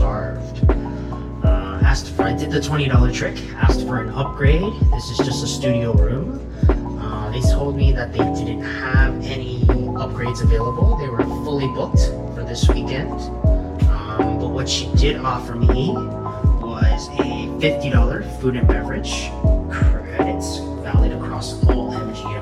I did the $20 trick, asked for an upgrade. This is just a studio room. They told me that they didn't have any upgrades available. They were fully booked for this weekend. But what she did offer me was a $50 food and beverage credits valid across all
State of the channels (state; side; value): identical; both; correlation 1.00